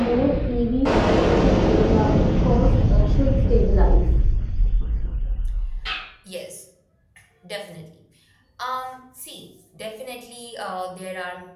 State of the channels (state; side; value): identical; both; correlation 1.00